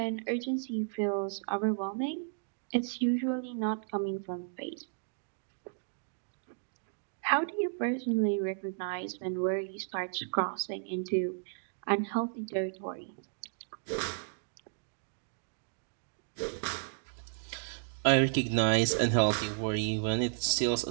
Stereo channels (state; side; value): silent; left; digital silence